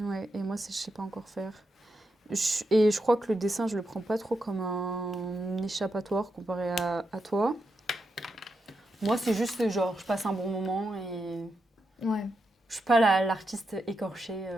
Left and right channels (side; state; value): both; normal; correlation 0.85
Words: et moi, je sais pas encore faire. Et je crois que le dessin, je le prends pas trop comme un échappatoire comparé à toi. Moi, c'est juste genre, je passe un bon moment et Ouais. je suis pas l'artiste écorchée.